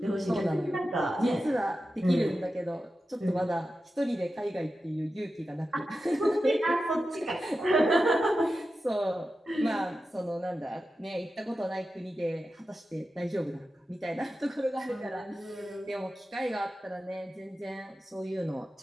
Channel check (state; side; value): normal; both; correlation 0.92